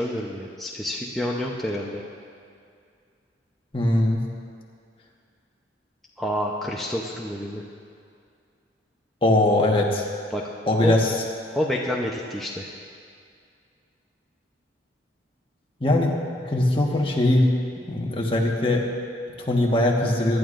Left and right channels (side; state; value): both; normal; correlation 0.67